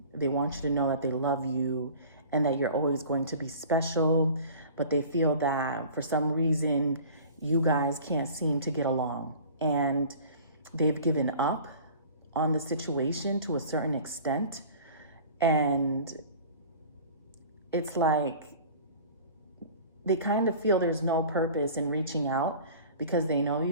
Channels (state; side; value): inverted; both; correlation -0.43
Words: They want you to know that they love you and that you're always going to be special. But they feel that for some reason, you guys can't seem to get along. And they've given up on the situation to a certain extent. And it's like they kind of feel there's no purpose in reaching out because they know